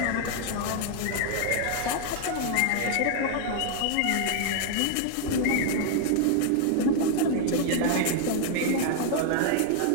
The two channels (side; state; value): both; different; correlation 0.00